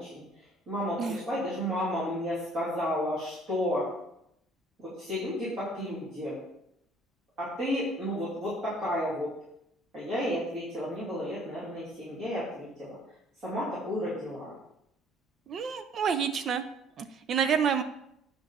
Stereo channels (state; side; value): normal; both; correlation 0.57